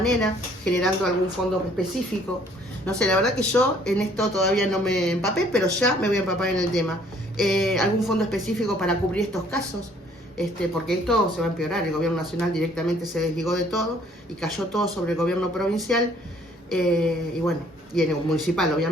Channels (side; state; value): both; normal; correlation 0.60